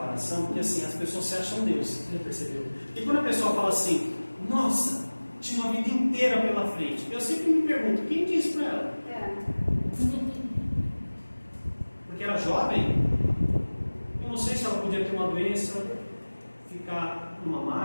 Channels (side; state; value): both; inverted; correlation -1.00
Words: porque assim, as pessoas se acham Deus, você já percebeu? E quando a pessoa fala assim, nossa, tinha uma vida inteira pela frente, eu sempre me pergunto, quem disse para ela? Porque era jovem, eu não sei se ela podia ter uma doença, ficar numa